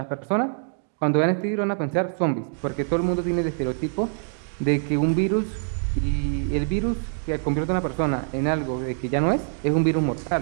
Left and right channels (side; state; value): left; silent; 59 dB below the other